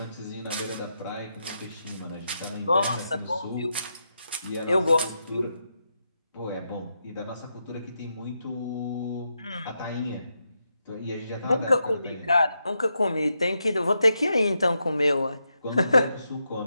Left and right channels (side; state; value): both; inverted; correlation -0.85